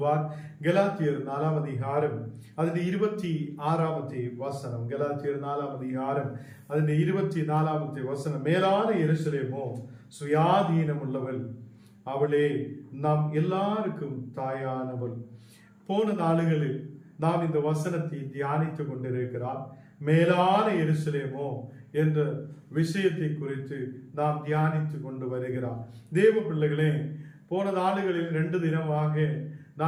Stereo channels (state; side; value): identical; both; correlation 1.00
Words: கலாத்தியர் 4 அதிகாரம் அதில் 26 வசனம். கலாத்தியர் 4 அதிகாரம் அதில் 24 வசனம். மேலான எருசலேமோ சுயாதீனம் உள்ளவள், அவளே நாம் எல்லாருக்கும் தாயானவள். போன நாளுகளில் நாம் இந்த வசனத்தை தியானித்துக் கொண்டிருக்கிறார். மேலான எருசலேமோ என்ற விஷயத்தை குறித்து நாம் தியானித்து கொண்டு வருகிறார். தேவ பிள்ளைகளே, போன நாளுகளில் 2 தினமாக